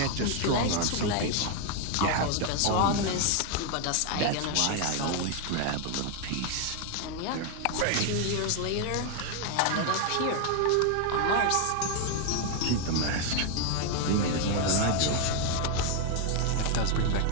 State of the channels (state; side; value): different; both; correlation 0.01